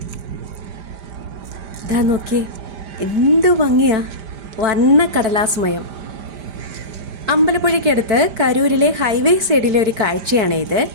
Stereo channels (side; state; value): left; late; 5.0 ms